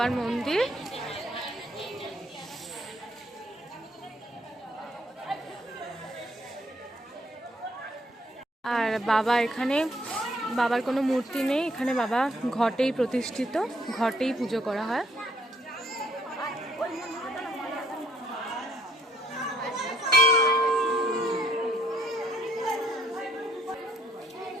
মন্দির, আর বাবা এখানে, বাবার কোনো মূর্তি নেই এখানে, বাবা ঘটেই প্রতিষ্ঠিত, ঘটেই পুজো করা হয়।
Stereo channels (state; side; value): normal; both; correlation 0.66